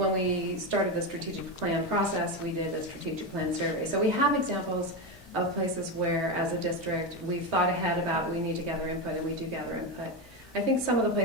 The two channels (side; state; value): both; normal; correlation 0.14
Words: we started the strategic plan process, we did a strategic plan survey. So we have examples of places where, as a district, we've thought ahead about we need to gather input, and we do gather input. I think some of the